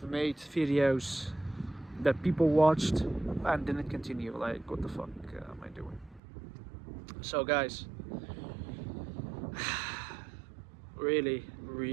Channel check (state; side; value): drops out; left; at 6.2 s